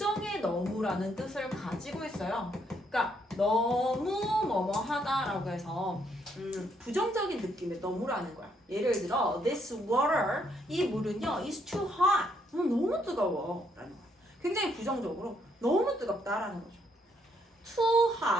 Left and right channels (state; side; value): normal; both; correlation 0.73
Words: 너무라는 뜻을 가지고 있어요. 그러니까 너무 뭐뭐하다라고 해서 부정적인 느낌의 너무라는 거야. 예를 들어 this water, 이 물은요 is too hot, 너무 뜨거워 라는 거야. 굉장히 부정적으로 너무 뜨겁다라는 거죠. Too